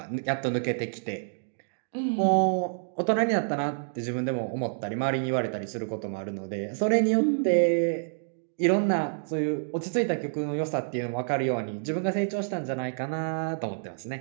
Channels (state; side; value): silent; left; digital silence